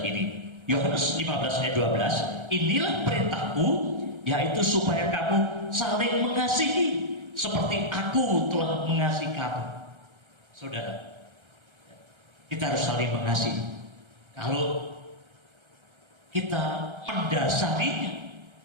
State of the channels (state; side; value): late; left; 1.3 ms